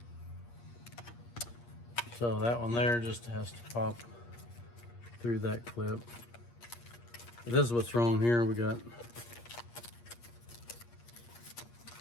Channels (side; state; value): right; late; 8.5 ms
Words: So that one there just has to pop through that clip. But this is what's wrong here. We got